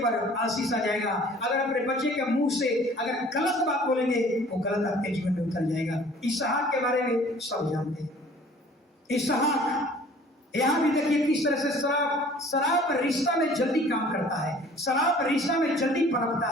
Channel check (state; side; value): normal; both; correlation 0.51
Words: आशीष आ जाएगा। अगर अपने बच्चे के मुंह से अगर गलत बात बोलेंगे, वो गलत आपके जीवन में उतर जाएगा। इसहाक के बारे में सब जानते हैं। इसहाक, यहाँ भी देखिए किस तरह से शराब रिश्ता में जल्दी काम करता है, शराब रिश्ता में जल्दी पनपता